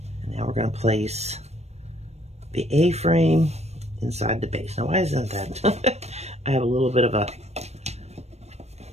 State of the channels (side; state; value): left; late; 0.31 ms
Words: And now we're going to place the A-frame inside the base. Now, why isn't that? I have a little bit of a